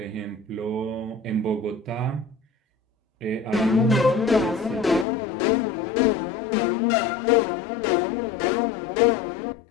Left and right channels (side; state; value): right; drops out; at 5.1 s